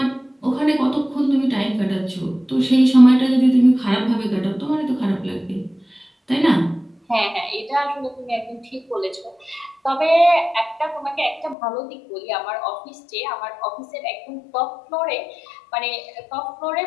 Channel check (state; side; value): drops out; right; at 11.6 s